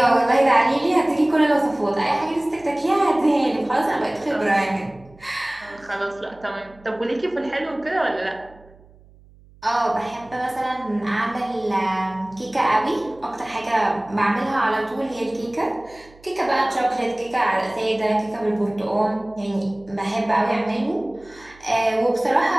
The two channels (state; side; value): noise; right; hum, 26 dB below the sound